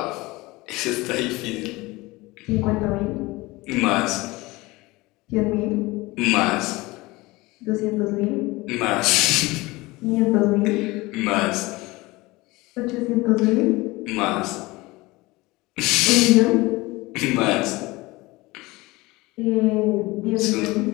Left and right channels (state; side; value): quieter; right; 21.6 dB